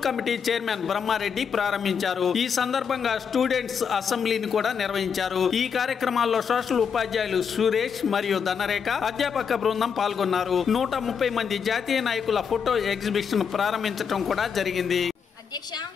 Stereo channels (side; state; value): right; quieter; 6.7 dB